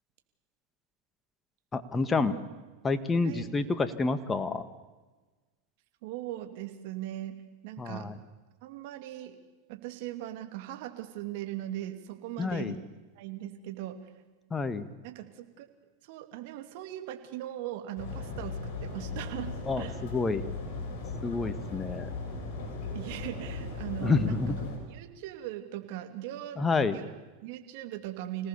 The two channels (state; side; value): normal; both; correlation 0.52